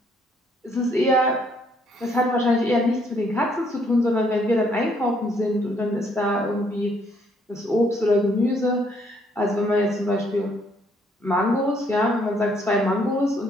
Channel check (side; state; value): both; normal; correlation 0.68